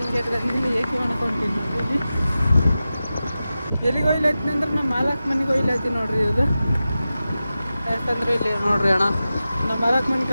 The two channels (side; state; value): both; inverted; correlation -0.94